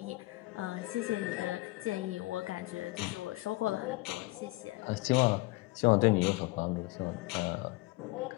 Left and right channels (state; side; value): quieter; right; 21.1 dB